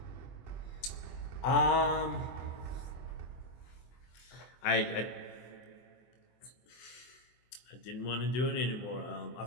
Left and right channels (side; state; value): right; late; 24 ms